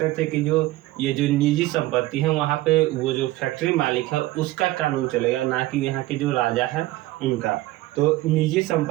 थे कि जो ये जो निजी संपत्ति है वहाँ पे वो जो फैक्ट्री मालिक है उसका कानून चलेगा, ना कि यहाँ के जो राजा है उनका। तो निजी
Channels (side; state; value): left; quieter; 17.6 dB